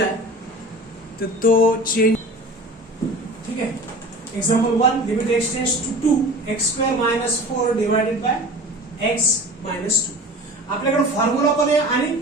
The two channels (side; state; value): both; normal; correlation 0.39